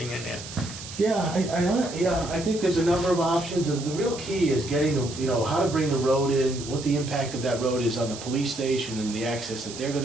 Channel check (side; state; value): right; noise; hiss, 12 dB below the sound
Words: in there? Yeah, I think there's a number of options, and the real key is getting the, you know, how to bring the road in, what the impact of that road is on the police station and the access that they're gonna